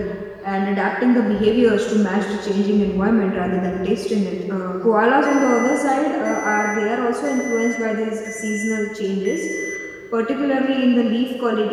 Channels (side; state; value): both; identical; correlation 1.00